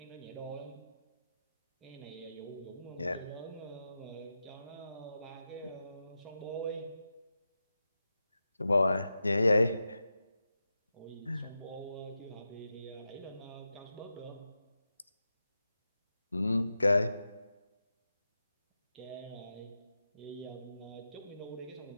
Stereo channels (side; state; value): both; inverted; correlation -0.89